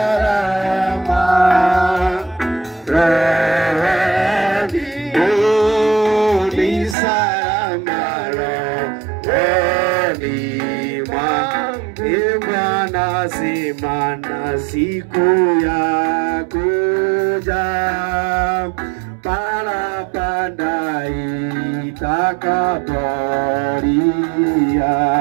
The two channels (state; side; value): drops out; left; at 7.0 s